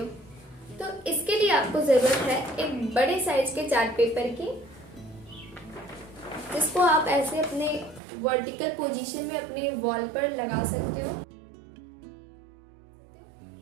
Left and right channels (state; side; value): drops out; left; at 8.0 s